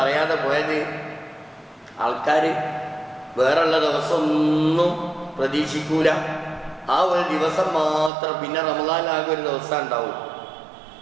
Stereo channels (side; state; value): left; drops out; at 8.1 s